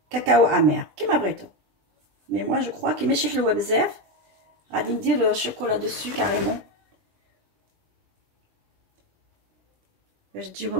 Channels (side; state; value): left; late; 20 ms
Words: كاكاو امير كيما بغيتو. مي moi je crois كي ماشي حلوه بزاف غادي ندير الشوكولا دوسو كاريمون باش